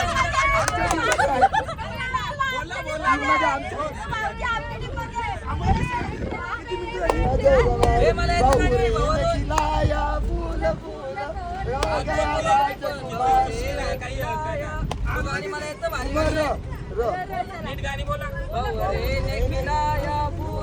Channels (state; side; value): identical; both; correlation 1.00